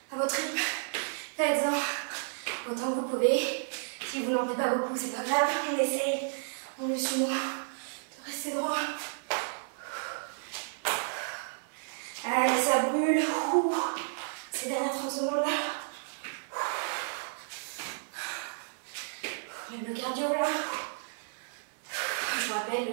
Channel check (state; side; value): silent; left; 56 dB below the other